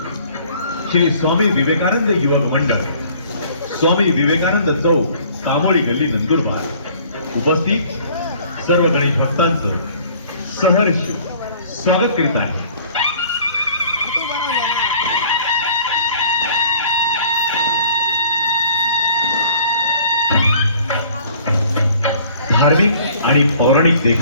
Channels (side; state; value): both; inverted; correlation -0.54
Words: श्री स्वामी विवेकानंद युवक मंडळ, स्वामी विवेकानंद चौक, कामोळी गल्ली, नंदुरबार उपस्थित सर्व गणेश भक्तांचं सहर्ष स्वागत करीत आहे. धार्मिक आणि पौराणिक